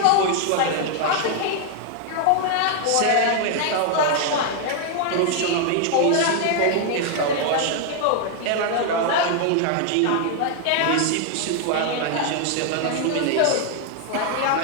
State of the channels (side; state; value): both; different; correlation 0.00